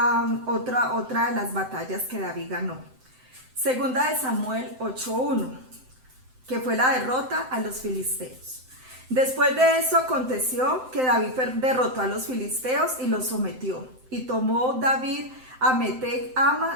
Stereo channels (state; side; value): late; left; 7.8 ms